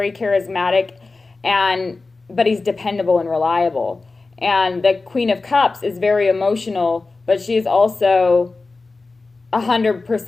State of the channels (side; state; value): right; quieter; 3.7 dB